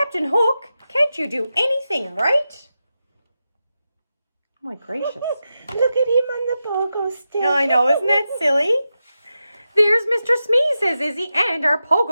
Hook, can't you do anything right? Oh my gracious. Look at him on the pogo stick. I know, isn't that silly? There's Mr. Smee, says Izzy, and our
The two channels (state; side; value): inverted; both; correlation -0.90